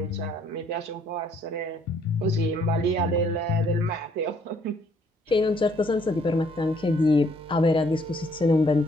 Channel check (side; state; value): both; normal; correlation 0.65